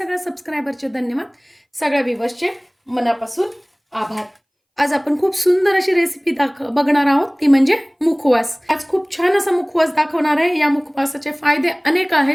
सबस्क्रायबरचे धन्यवाद, सगळ्या व्ह्यूअर्सचे मनापासून आभार. आज आपण खूप सुंदर अशी रेसिपी बघणार आहोत, ती म्हणजे मुखवास. आज खूप छान असा मुखवास दाखवणार आहे. या मुखवासाचे फायदे अनेक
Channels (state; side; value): identical; both; correlation 1.00